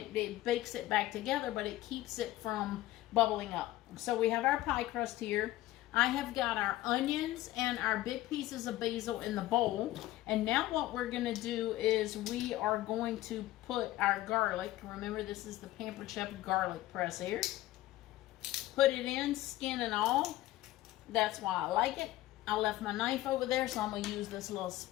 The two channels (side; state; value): right; quieter; 16.0 dB